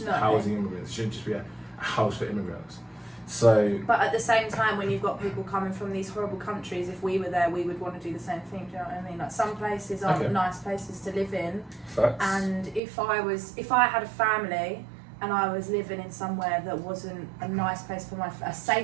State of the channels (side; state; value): left; drops out; at 12.8 s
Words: No. housing immigrants. It shouldn't just be a house for immigrants. So But at the same time, when you've got people coming from these horrible countries, if we were there, we would want to do the same thing. Do you know what I mean? Like, some places aren't Okay. nice places to live in, facts. and if I had a family and I was living in somewhere that wasn't a nice place for a